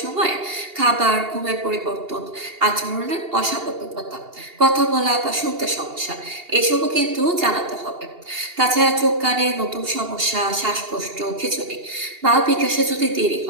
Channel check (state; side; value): late; left; 2.8 ms